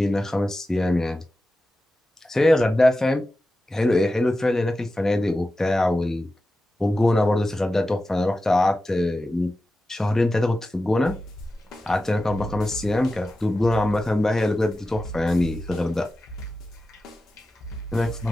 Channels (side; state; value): both; normal; correlation 0.93